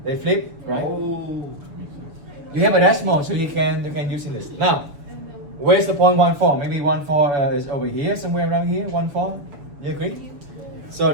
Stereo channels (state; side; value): late; left; 6.9 ms